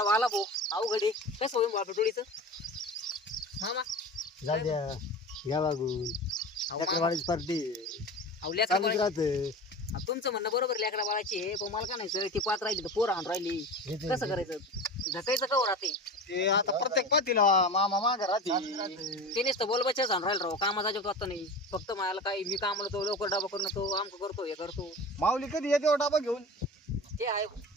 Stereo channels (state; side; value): normal; both; correlation 0.32